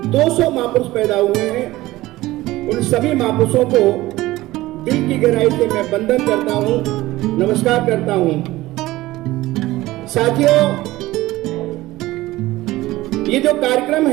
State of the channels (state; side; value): quieter; left; 17.7 dB